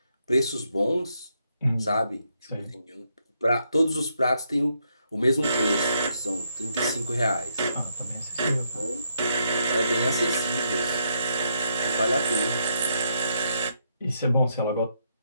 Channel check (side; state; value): both; inverted; correlation -0.77